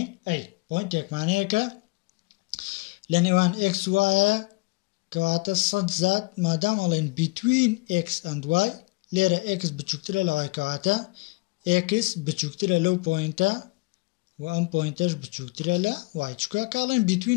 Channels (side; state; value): right; quieter; 25.0 dB